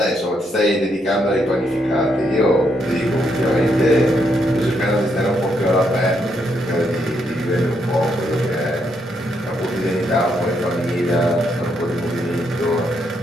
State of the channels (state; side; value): normal; both; correlation 0.77